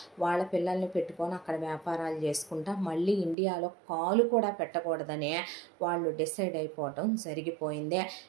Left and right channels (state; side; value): drops out; left; at 3.4 s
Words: వాళ్ళ పిల్లల్ని పెట్టుకొని అక్కడ వ్యాపారాలు చేసుకుంటా మళ్ళీ ఇండియాలో కాలు కూడా పెట్టకూడదని వాళ్ళు డిసైడ్ అయిపోవటం జరిగిపోయింది.